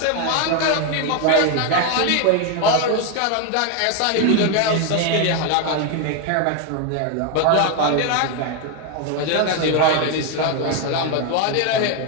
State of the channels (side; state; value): both; different; correlation 0.01